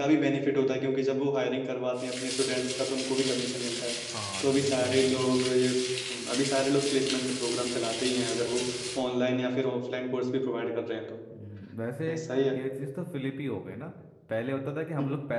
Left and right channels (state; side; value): identical; both; correlation 1.00